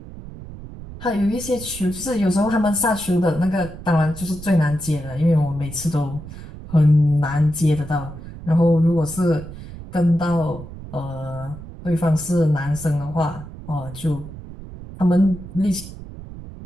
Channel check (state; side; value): noise; right; rumble, 14 dB below the sound